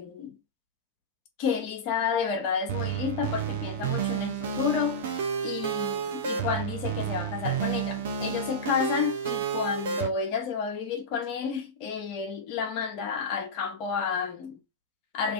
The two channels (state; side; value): normal; both; correlation -0.12